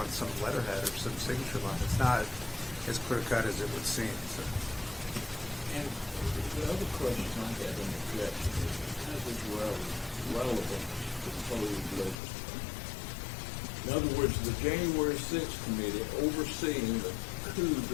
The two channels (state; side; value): drops out; right; at 12.2 s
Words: some letterhead or some signature line. It's not as clear-cut as it would seem. So. And the other question I had in the objection is, how is this relevant to the proposed legislation? In other words, the January 6th committee overseeing the coup